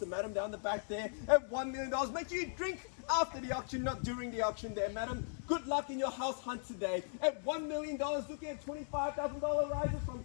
madam down the back there. At $1 million, make sure you drink after the auction, not during the auction there, madam. Good luck in your house hunt today. At $1 million, looking at $25,000 rises from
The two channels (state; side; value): silent; right; digital silence